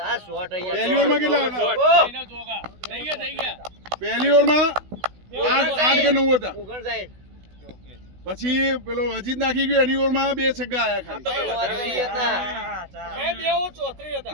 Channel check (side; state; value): left; late; 16 ms